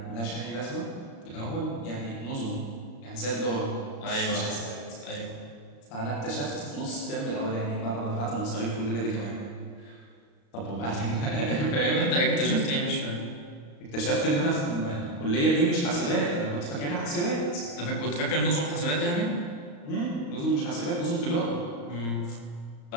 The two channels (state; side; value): late; right; 35 ms